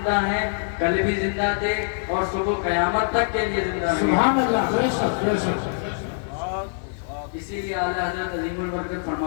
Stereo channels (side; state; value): right; silent; digital silence